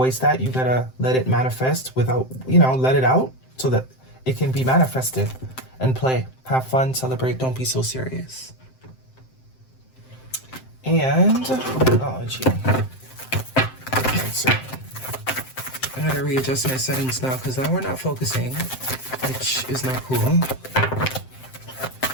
that. You got to let it manifest without, let it out so that it can be manifested and play. Have fun, celebrate, don't be so serious. And, oh gee. Cancer. I got to readjust my settings now because now we're not focusing, which is not cool.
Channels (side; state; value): right; late; 7.7 ms